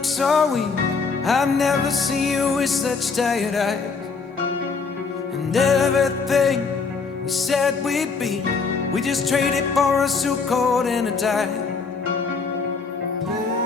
so weak. I've never seen you with such tired eyes. And everything we said we'd be, we just traded for a suit coat and a tie.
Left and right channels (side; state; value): right; quieter; 4.9 dB